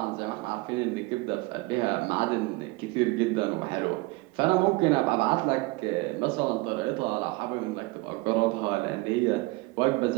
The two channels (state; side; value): quieter; left; 23.3 dB